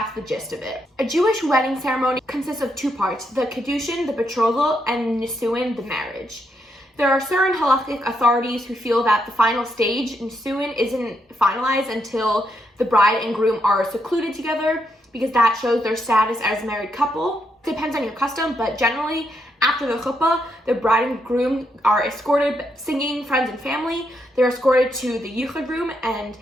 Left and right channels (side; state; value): both; normal; correlation 0.79